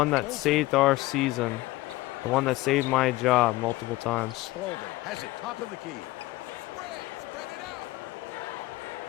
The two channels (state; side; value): quieter; right; 18.9 dB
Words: that saved our season, the one that saved my job multiple times. Spalding has it top of the key.